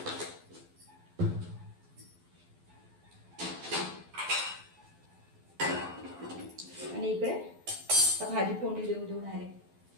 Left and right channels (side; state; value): left; late; 12 ms